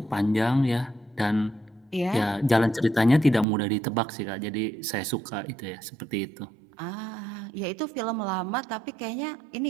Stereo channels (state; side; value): drops out; left; at 3.5 s